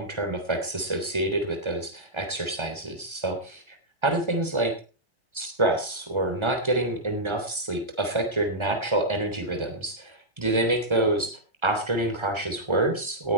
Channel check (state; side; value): late; left; 1.3 ms